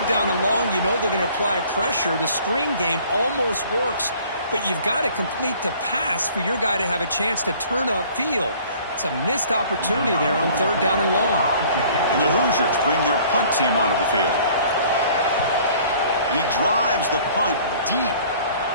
down and long. You know they're going to apply pressure. The screen game almost works. But you've got to complete the pass for your guy to have a chance to turn upfield. It's a missed opportunity there on 3rd down and long. And the Hoosiers bring their punt team onto the field. And he drives the punt deep.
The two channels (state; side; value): inverted; both; correlation -0.53